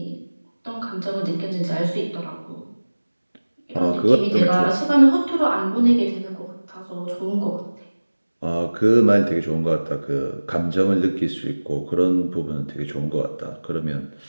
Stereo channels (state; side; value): inverted; both; correlation -1.00